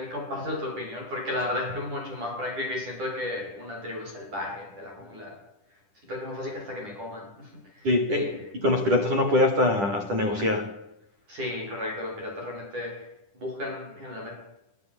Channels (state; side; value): late; left; 10 ms